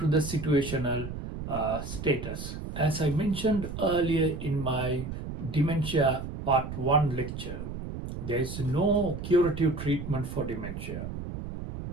the situational status. As I mentioned earlier in my dementia part 1 lecture, there is no curative treatment for dementia,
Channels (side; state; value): right; noise; rumble, 7 dB below the sound